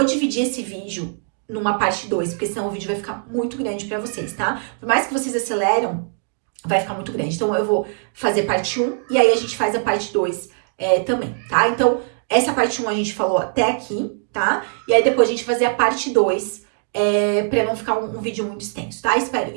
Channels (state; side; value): silent; left; digital silence